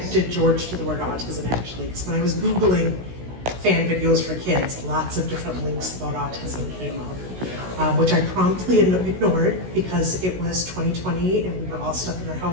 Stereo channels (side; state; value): left; late; 16 ms